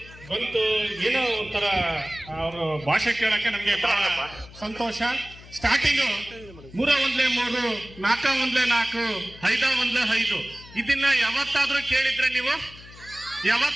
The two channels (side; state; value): left; noise; hum, 19 dB below the sound